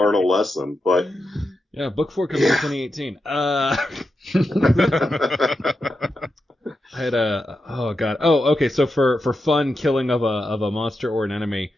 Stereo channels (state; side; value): normal; both; correlation 0.87